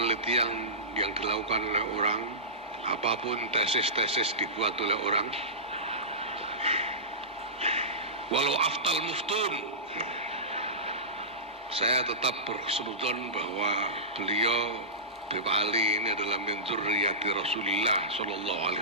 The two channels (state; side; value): normal; both; correlation -0.20